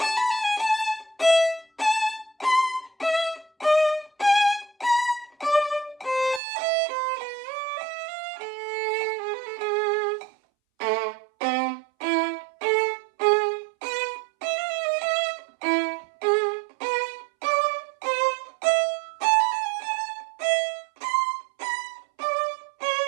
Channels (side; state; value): left; drops out; at 6.4 s